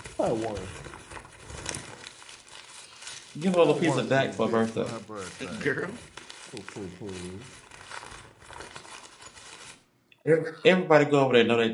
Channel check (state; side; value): identical; both; correlation 1.00